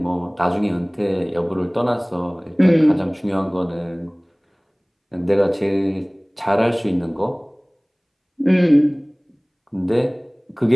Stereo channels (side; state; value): both; identical; correlation 1.00